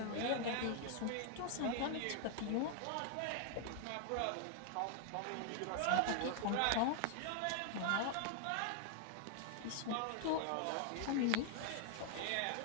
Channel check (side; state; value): both; different; correlation 0.00